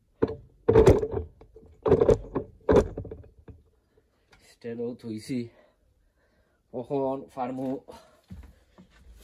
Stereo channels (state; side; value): identical; both; correlation 1.00